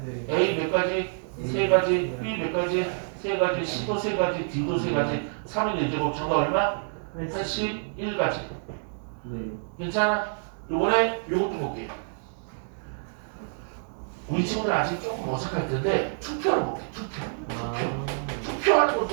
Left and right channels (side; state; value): left; silent; digital silence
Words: 네. A 몇 가지? 세 가지. B 몇 가지? 세 가지. C도 세 가지. D도 세 가지. 3인 1제곱 정답 얼마? 81가지. 네. 괜찮아? 요번에 요것도 볼게요. 우리 친구들 아직 조금 어색할 텐데 투표를 볼게. 투표하는